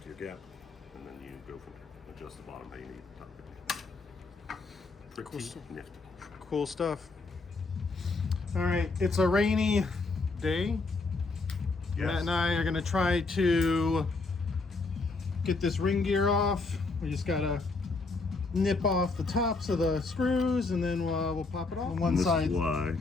to your gap, and then you go from there. Adjust the bottom how you need the top. Pretty nifty. Cool stuff. All right, it's a rainy day. Yes. Matt and I are gonna try to get this ring gear off. We just gotta nip off the tops of the screws, and then we'll pop it off. On one side. This is why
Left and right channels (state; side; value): quieter; right; 3.8 dB